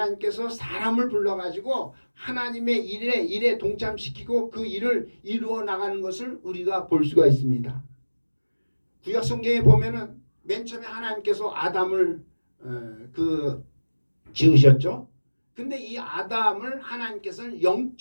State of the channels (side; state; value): both; inverted; correlation -1.00